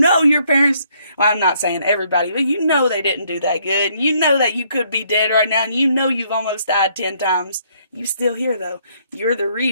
your parents, well, I'm not saying everybody, but you know they didn't do that good. And you know that you could be dead right now, and you know you've almost died 10 times. You still here, though. You're the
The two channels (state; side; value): inverted; both; correlation -0.67